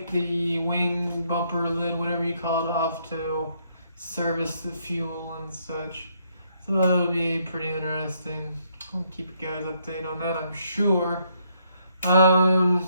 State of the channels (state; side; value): inverted; both; correlation -0.72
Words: the wing bumper lid, whatever you call it, off to service the fuel and such. So that'll be pretty interesting. I'll keep you guys updated on that, I'm sure.